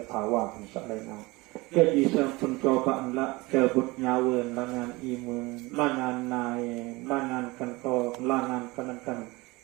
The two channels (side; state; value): left; quieter; 22.7 dB